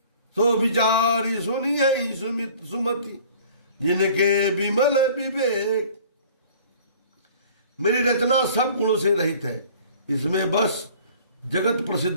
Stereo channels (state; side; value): inverted; both; correlation -0.50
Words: सो विचारी सुनी है सुमति, जिनके विमल विवेक। मेरी रचना सब गुणों से रहित है, इसमें बस जगत